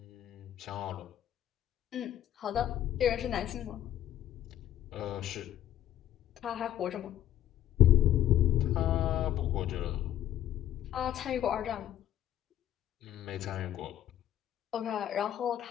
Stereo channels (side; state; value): right; quieter; 11.9 dB